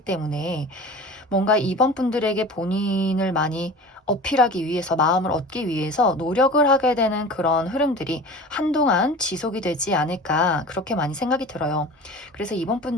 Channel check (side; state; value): both; normal; correlation 0.37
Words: 뭔가 이번 분들에게 본인을 많이 어필하기 위해서, 마음을 얻기 위해서 노력을 하게 되는 그런 흐름들이 한동안 지속이 되지 않을까 그렇게 많이 생각이 들어요. 그래서 이번